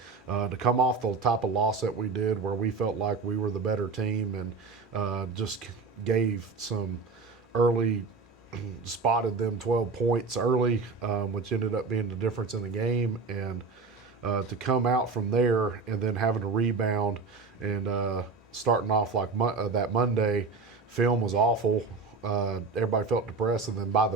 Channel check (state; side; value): quieter; left; 4.3 dB